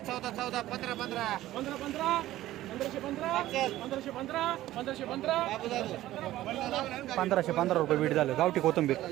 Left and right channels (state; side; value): quieter; left; 15.0 dB